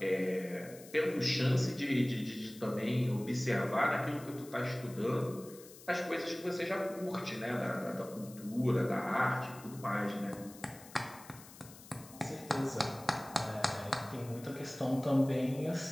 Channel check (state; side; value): noise; left; hiss, 19 dB below the sound